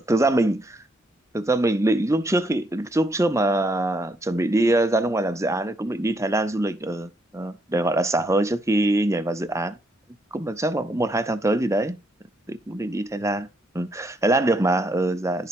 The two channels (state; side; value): normal; both; correlation 0.73